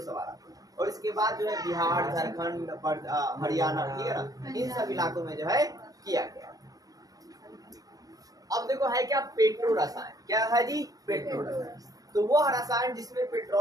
सवाल। और इसके बाद जो है बिहार, झारखंड, हरियाणा, ठीक है ना, इन सब इलाकों में जो है किया गया। अब देखो है क्या, पेट्रो रसायन। क्या है जी, पेट्रो रसायन। तो वो रसायन जिसमें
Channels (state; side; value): late; left; 0.18 ms